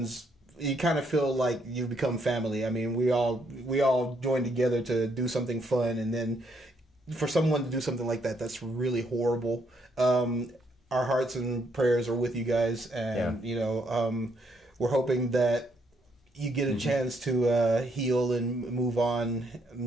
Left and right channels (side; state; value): both; normal; correlation 0.73